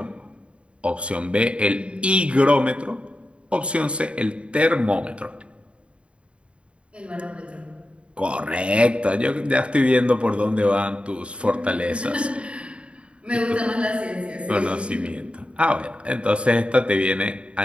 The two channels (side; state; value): left; late; 0.059 ms